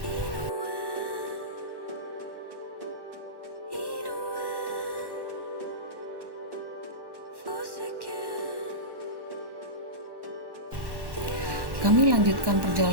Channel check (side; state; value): left; late; 1.1 ms